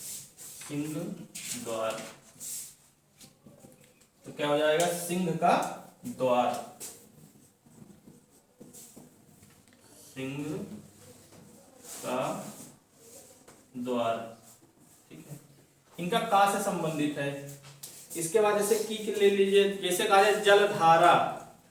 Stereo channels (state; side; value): identical; both; correlation 1.00